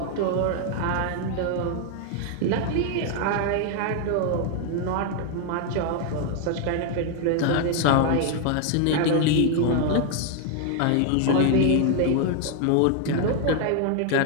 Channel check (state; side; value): different; both; correlation 0.01